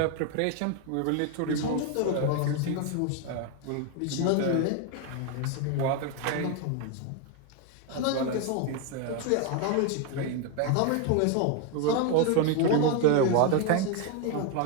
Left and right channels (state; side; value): different; both; correlation 0.01